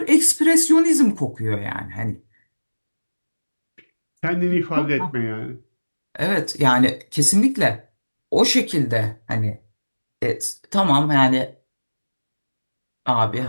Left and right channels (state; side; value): inverted; both; correlation -1.00